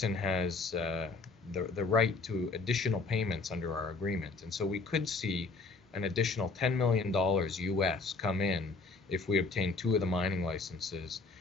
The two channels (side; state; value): right; quieter; 4.0 dB